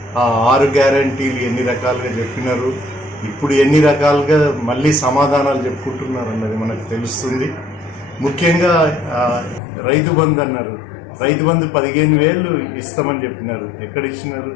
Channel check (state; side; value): drops out; right; at 9.6 s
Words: 6 గ్యారంటీలు ఎన్ని రకాలుగా చెప్పినారు, ఇప్పుడు ఎన్ని రకాలుగా మళ్ళీ సమాధానాలు చెప్పుకుంటున్నారు అన్నది మనకు తెలుస్తుంది. ముఖ్యంగా రైతు బంధు అన్నారు. రైతు బంధు 15,000 ఇస్తామని చెప్పినారు. ఎక్కడ ఇచ్చినారు?